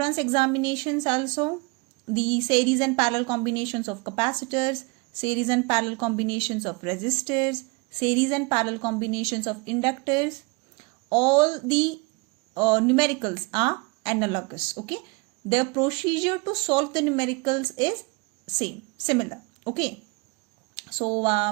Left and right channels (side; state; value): left; quieter; 29.1 dB